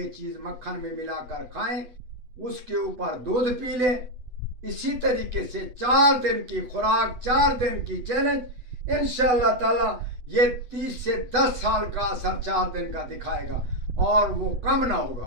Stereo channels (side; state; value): left; late; 8.1 ms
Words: चीज़ मक्खन में मिलाकर खाएं, उसके ऊपर दूध पी लें। इसी तरीके से 4 दिन की खुराक, 4 दिन की चैलेंज, इंशाअल्लाह ताला ये 30 से 10 साल का असर 4 दिन का दिखाएगा और वो कम ना